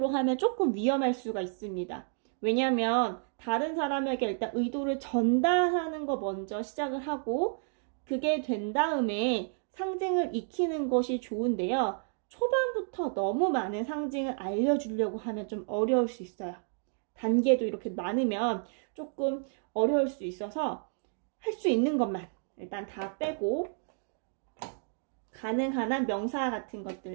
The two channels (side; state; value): left; silent; 57 dB below the other